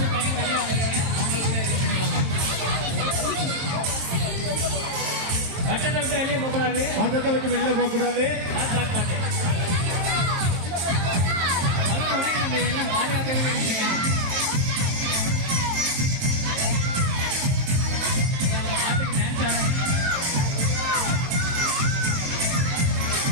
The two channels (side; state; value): left; late; 23 ms